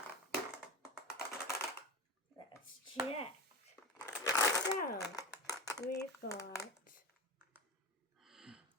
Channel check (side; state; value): both; normal; correlation 0.27